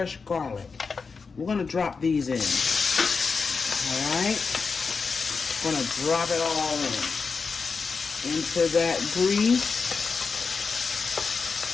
garlic. We're going to drop these in. All right? I'm going to drop it all in into that grease.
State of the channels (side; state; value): right; quieter; 4.9 dB